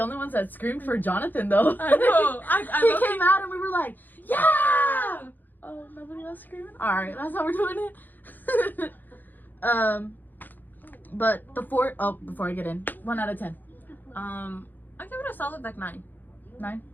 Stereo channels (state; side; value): late; right; 0.087 ms